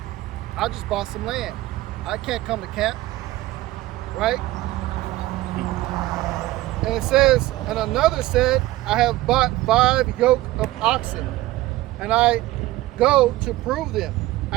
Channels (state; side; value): quieter; left; 17.3 dB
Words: I just bought some land. I can't come to camp, right? And it says, and another said, I have bought 5 yoke of oxen, and I go to prove them.